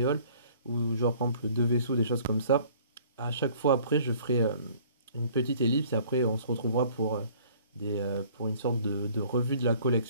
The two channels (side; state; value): both; inverted; correlation -0.54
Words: halls, ou genre par exemple deux vaisseaux, des choses comme ça, à chaque fois après, je ferai une petite ellipse et après on se retrouvera pour une sorte de revue de la